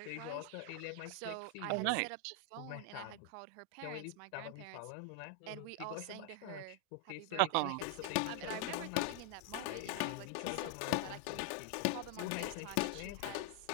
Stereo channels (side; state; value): both; different; correlation 0.00